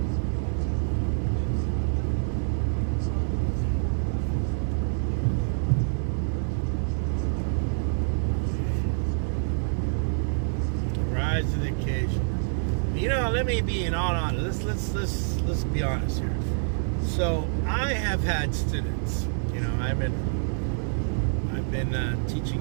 Let me be in all honest. Let's be honest here. So I have had students. I've been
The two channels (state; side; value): silent; left; digital silence